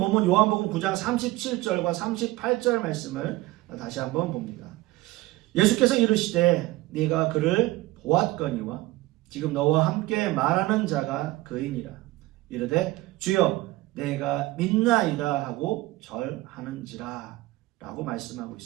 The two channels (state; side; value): quieter; left; 18.9 dB